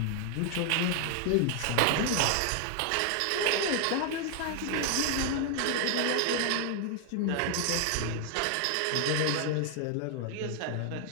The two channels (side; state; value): both; different; correlation 0.00